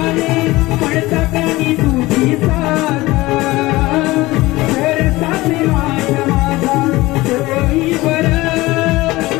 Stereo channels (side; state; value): right; quieter; 19.6 dB